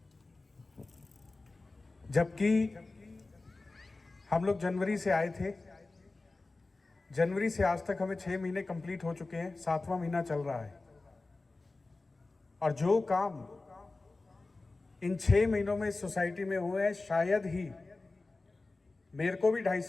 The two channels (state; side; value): quieter; right; 3.4 dB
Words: जबकि हम लोग जनवरी से आए थे, जनवरी से आज तक हमें 6 महीने कंप्लीट हो चुके हैं, 7वां महीना चल रहा है, और जो काम इन 6 महीनों में इस सोसाइटी में हुए हैं, शायद ही, मेरे को भी 2.5